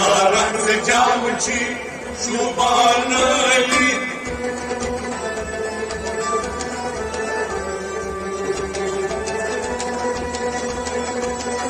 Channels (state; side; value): identical; both; correlation 1.00